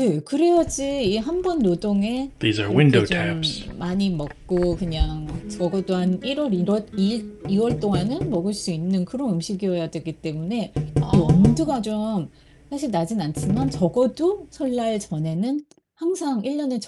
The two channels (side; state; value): both; identical; correlation 1.00